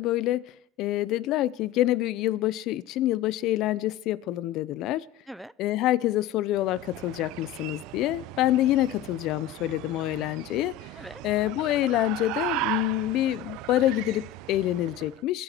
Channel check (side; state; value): right; quieter; 10.7 dB